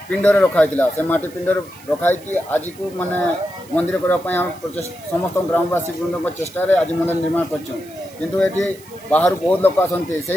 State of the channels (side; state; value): right; noise; hiss, 23 dB below the sound